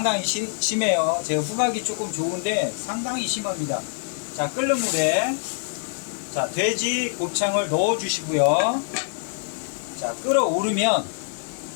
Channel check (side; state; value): right; silent; digital silence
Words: 심해요. 제 후각이 조금 좋은데 상당히 심합니다. 자, 끓는 물에 자, 돼지 곱창을 넣어 주시고요. 자, 끓어오르면